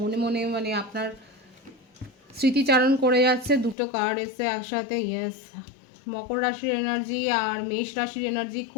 মনে, মানে আপনার স্মৃতিচারণ করে যাচ্ছে। দুটো কার্ড এসছে একসাথে, ইয়েস। মকর রাশির এনার্জি আর মেষ রাশির এনার্জি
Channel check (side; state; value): right; drops out; at 3.8 s